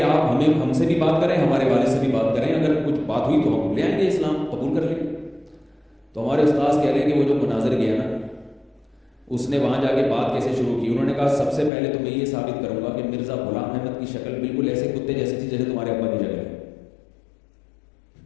آپ ہم سے بھی بات کریں، ہمارے والد سے بھی بات کریں، اگر کچھ بات ہوئی تو ہم لے آئیں گے، اسلام قبول کر لیں گے۔ تو ہمارے استاذ کہہ رہے ہیں کہ وہ جو مناظر گیا نا، اس نے وہاں جا کے بات کیسے شروع کی۔ انہوں نے کہا سب سے پہلے تو میں یہ ثابت کروں گا کہ مرزا غلام احمد کی شکل بالکل ایسے کتے جیسی تھی جیسے تمہارے ابا کی شکل ہے۔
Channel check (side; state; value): right; drops out; at 11.7 s